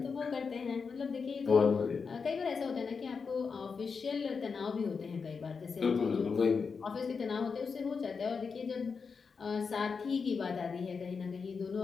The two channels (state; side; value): quieter; right; 5.3 dB